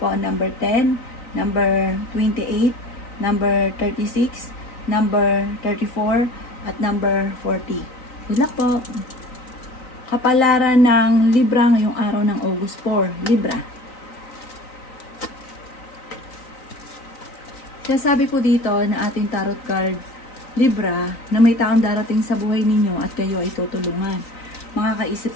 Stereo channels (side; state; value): right; late; 3.9 ms